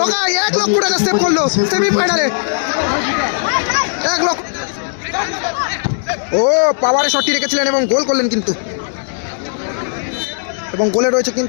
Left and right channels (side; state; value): right; silent; 65 dB below the other